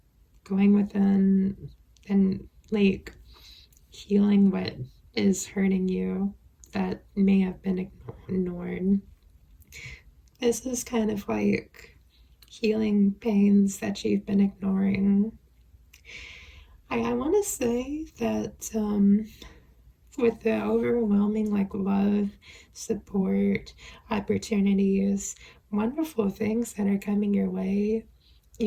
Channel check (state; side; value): identical; both; correlation 1.00